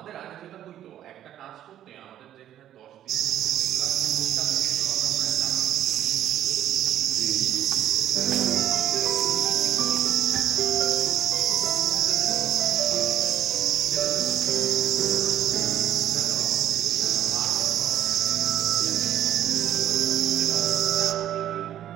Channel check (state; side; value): quieter; left; 11.5 dB